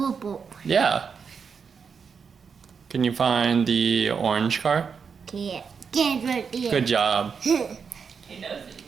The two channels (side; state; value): left; quieter; 6.1 dB